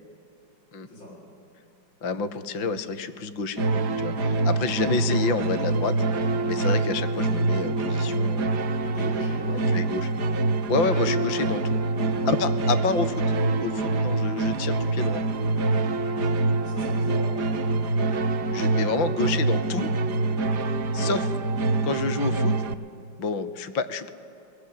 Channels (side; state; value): right; late; 5.8 ms